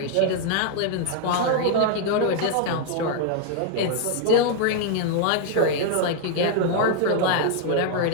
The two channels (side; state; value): both; different; correlation 0.00